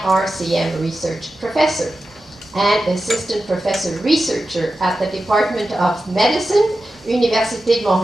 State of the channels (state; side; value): normal; both; correlation 0.92